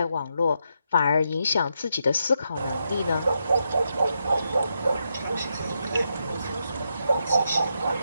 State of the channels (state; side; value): inverted; both; correlation -0.82